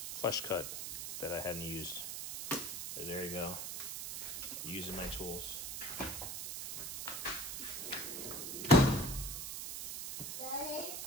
flush cut that I hadn't used. So there you go, using my tools. Daddy?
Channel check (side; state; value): right; noise; hiss, 5 dB below the sound